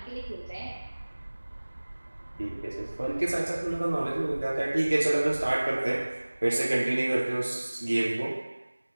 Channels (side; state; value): both; inverted; correlation -1.00